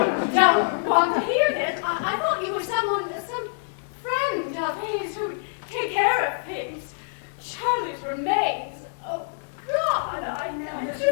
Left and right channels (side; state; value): right; silent; digital silence